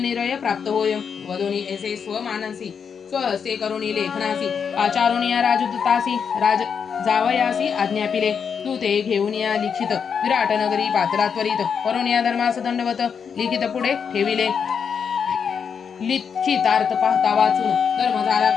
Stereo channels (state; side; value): quieter; right; 6.7 dB